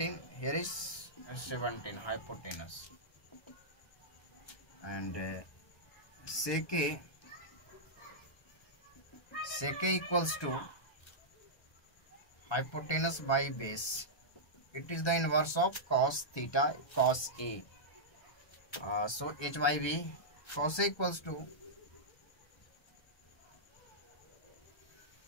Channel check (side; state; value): right; late; 1.3 ms